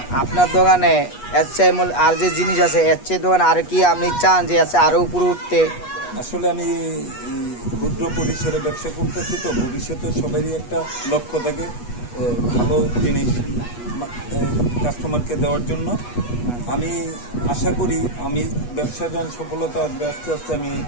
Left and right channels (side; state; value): right; late; 8.3 ms